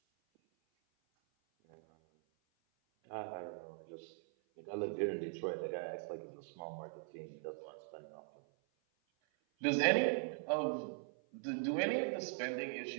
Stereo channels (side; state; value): left; silent; 50 dB below the other